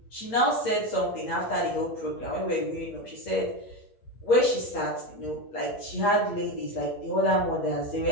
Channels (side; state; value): right; late; 8.7 ms